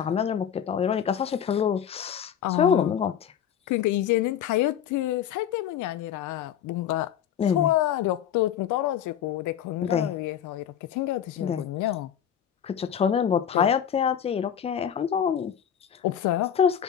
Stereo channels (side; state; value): right; quieter; 9.1 dB